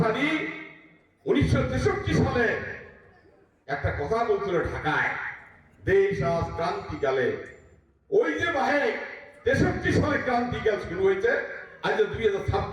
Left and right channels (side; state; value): both; identical; correlation 1.00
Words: 1963 সালে একটা কথা বলছিল ঢাকায়, দেশ আজ ক্রান্তিকালে। ওই যে ভাই 63 সালে ক্রান্তিকাল শুরু হয়েছে, আজ